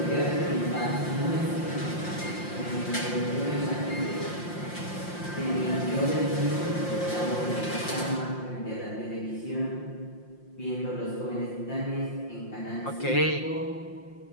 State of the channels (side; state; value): right; late; 5.7 ms